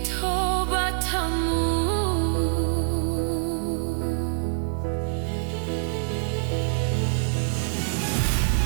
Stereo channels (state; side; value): silent; left; digital silence